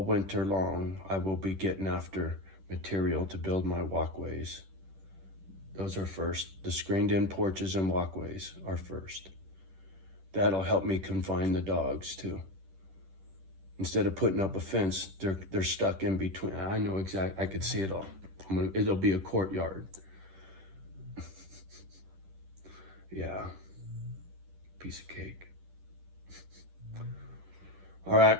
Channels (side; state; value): left; late; 10 ms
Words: winter long, I will be getting after material to build my walkways. Those are first. The screened-in porches and walkways are first. That'll help me confine the dogs too. Instead of putting up a fence, they're stuck in between. I know exactly. I could see it all. It'll be a courtyard. Yeah, piece of cake. All right,